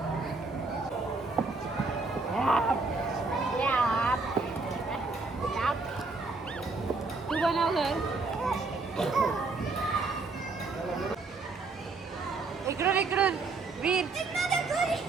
तू बनव घर. इकडून इकडून वीर.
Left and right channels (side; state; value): left; quieter; 3.8 dB